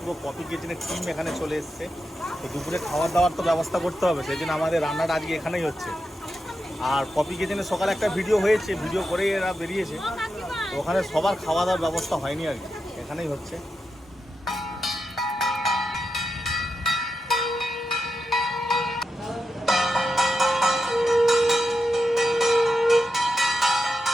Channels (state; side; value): normal; both; correlation 0.88